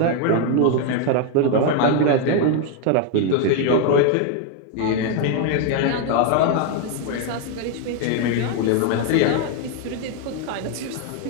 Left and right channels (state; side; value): different; both; correlation 0.01